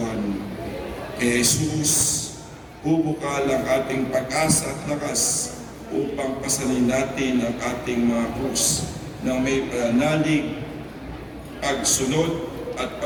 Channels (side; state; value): both; identical; correlation 1.00